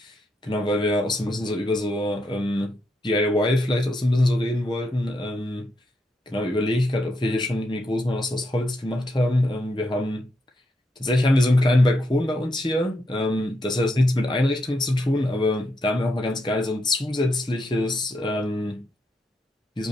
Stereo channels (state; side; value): normal; both; correlation 0.81